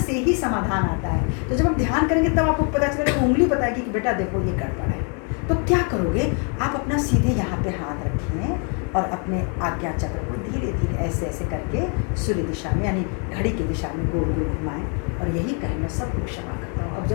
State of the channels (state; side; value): quieter; right; 38.9 dB